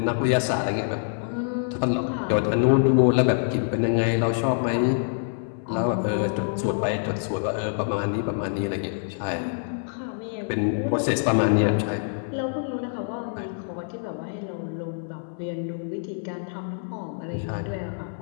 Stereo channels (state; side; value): silent; right; 61 dB below the other